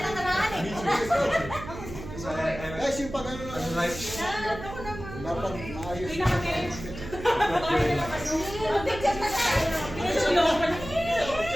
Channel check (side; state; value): right; noise; hum, 11 dB below the sound